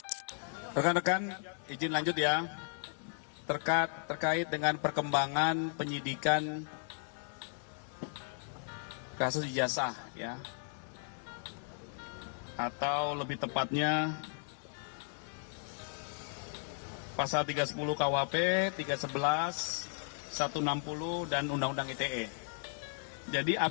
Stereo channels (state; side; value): silent; right; 54 dB below the other